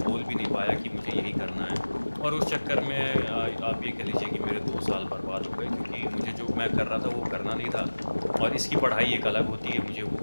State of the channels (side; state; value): both; inverted; correlation -1.00